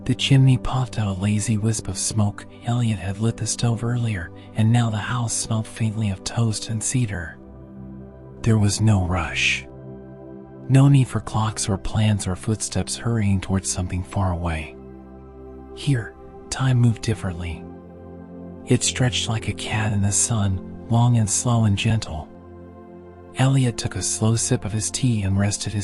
The chimney puffed out a lazy wisp of smoke. Elliot had lit the stove earlier, and now the house smelled faintly of toast and cedar. There was no rush. No need for clocks or plans or footsteps hurrying towards something far away. Here, time moved differently. It stretched like a cat in the sun, long and slow and gentle. Elliot took a slow sip of his tea and rested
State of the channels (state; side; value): identical; both; correlation 1.00